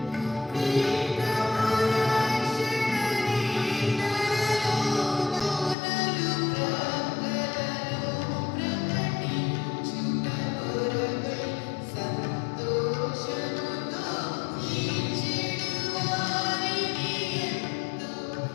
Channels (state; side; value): drops out; right; at 5.8 s